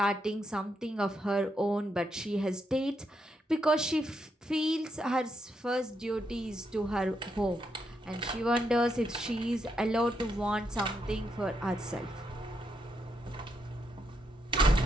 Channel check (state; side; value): normal; both; correlation 0.80